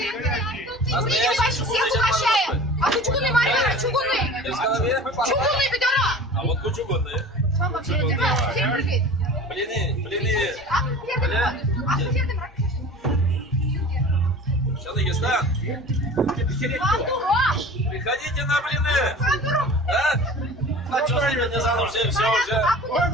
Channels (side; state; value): both; normal; correlation 0.40